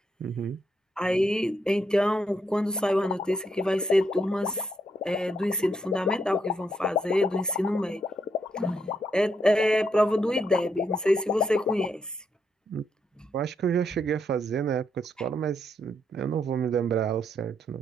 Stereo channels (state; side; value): normal; both; correlation 0.77